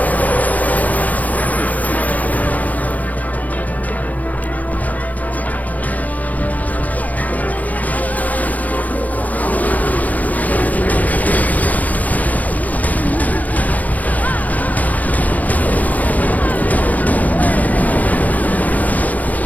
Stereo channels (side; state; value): right; late; 0.078 ms